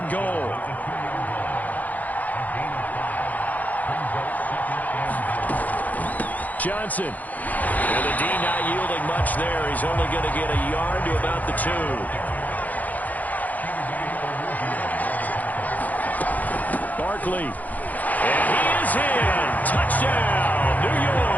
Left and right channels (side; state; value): right; late; 0.080 ms